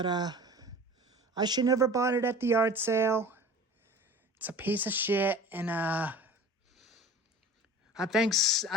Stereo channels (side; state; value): both; normal; correlation 0.40